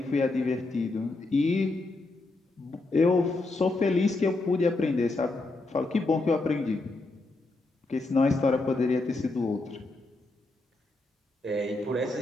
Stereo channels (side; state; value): right; quieter; 3.1 dB